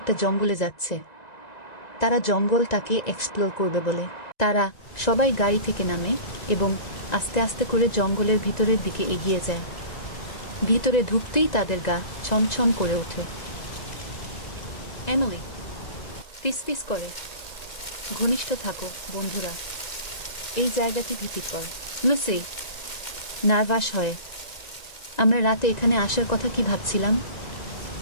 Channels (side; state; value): right; late; 1.9 ms